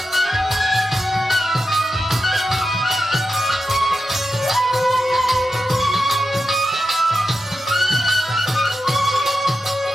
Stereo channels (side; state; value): both; normal; correlation 0.90